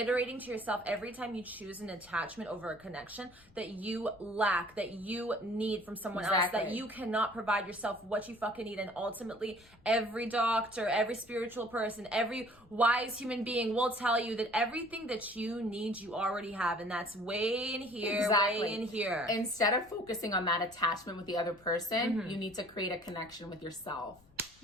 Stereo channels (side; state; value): left; noise; rumble, 28 dB below the sound